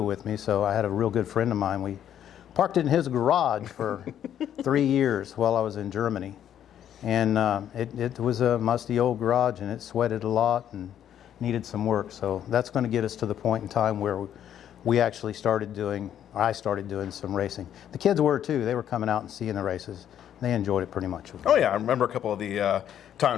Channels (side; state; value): right; quieter; 10.2 dB